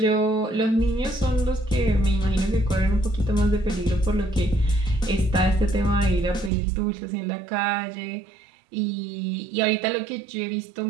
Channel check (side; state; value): left; drops out; at 6.5 s